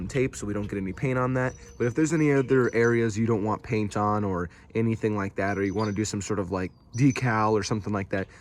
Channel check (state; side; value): identical; both; correlation 1.00